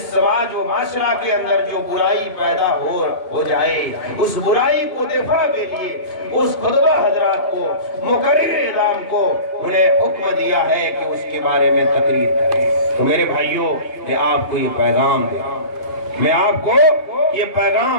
سماج و معاشرہ کے اندر جو برائی پیدا ہو جائے، اس برائی کو دفاع کے لیے اس خطبہ حضرات کو، مقرر اعلام کو انہیں حکم دیا ہے کہ اس کے بارے میں تقریر کریں۔ تو میرے بھائیوں، میں آپ کو یہ پیغام دے رہا ہوں، میں آپ کو یہ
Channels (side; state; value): right; late; 2.8 ms